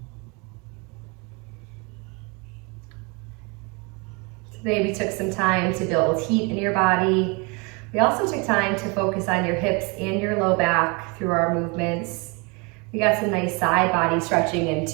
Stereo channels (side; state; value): left; quieter; 30.0 dB